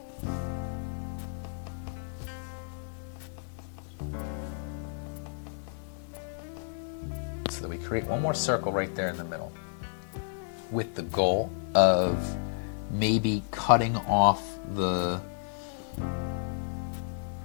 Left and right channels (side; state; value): right; silent; digital silence